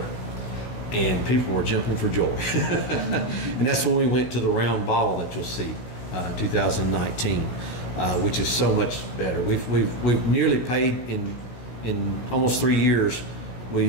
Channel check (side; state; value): right; late; 16 ms